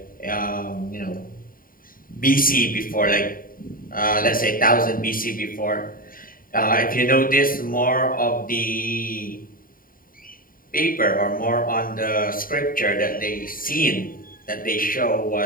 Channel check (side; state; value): right; late; 0.41 ms